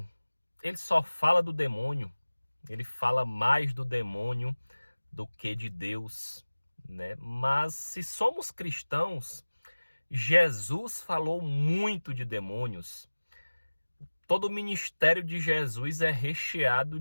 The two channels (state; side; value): inverted; both; correlation -1.00